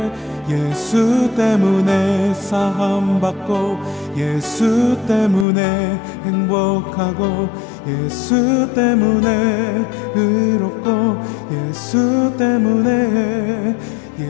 사함받고, 예수 때문에 행복하고, 예수 때문에 의롭고, 예수 때문에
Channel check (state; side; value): drops out; right; at 5.5 s